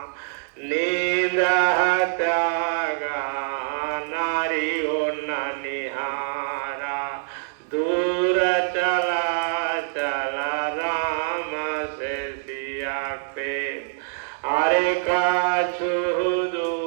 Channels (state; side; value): silent; left; digital silence